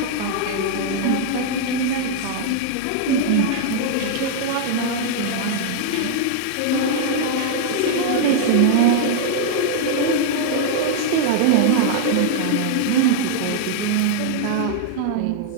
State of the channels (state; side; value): different; both; correlation 0.00